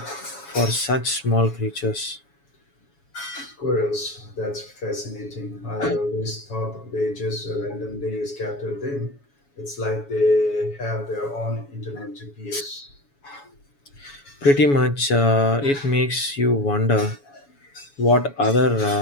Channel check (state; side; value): late; right; 7.1 ms